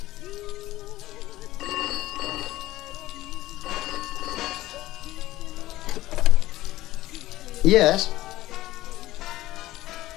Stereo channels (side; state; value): right; quieter; 16.3 dB